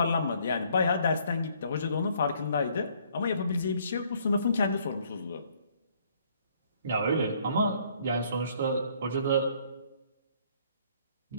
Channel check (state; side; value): inverted; both; correlation -0.64